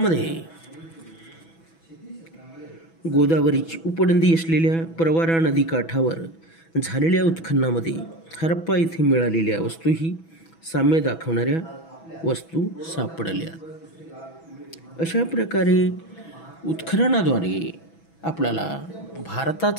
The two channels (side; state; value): right; late; 6.1 ms